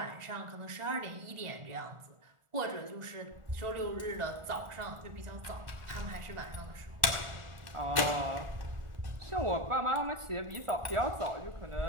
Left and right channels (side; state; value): left; late; 1.4 ms